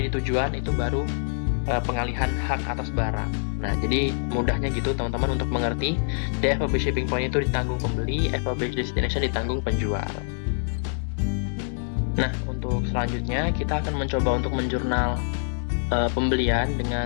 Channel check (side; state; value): right; silent; 61 dB below the other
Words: di tujuan, itu baru pengalihan hak atas barang. Nah jadi mudahnya gitu teman-teman untuk mengerti, di FOB shipping point itu ditanggung pembeli, FOB destination ditanggung penjual. Nah untuk selanjutnya kita akan mencoba untuk menjurnal pembelian